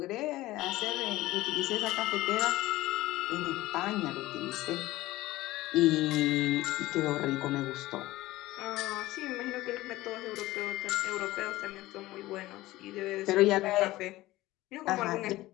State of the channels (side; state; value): right; quieter; 17.5 dB